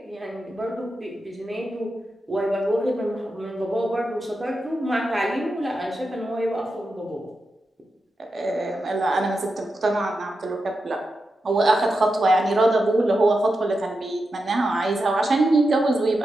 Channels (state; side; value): normal; both; correlation 0.89